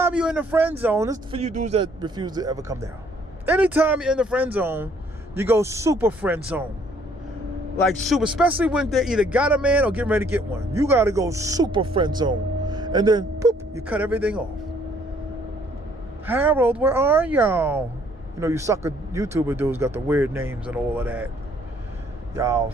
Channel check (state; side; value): normal; both; correlation 0.63